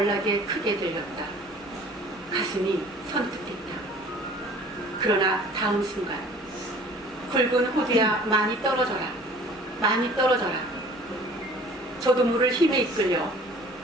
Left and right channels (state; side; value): normal; both; correlation 0.49